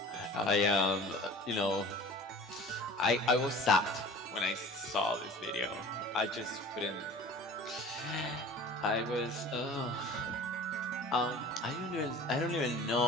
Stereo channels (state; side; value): normal; both; correlation 0.43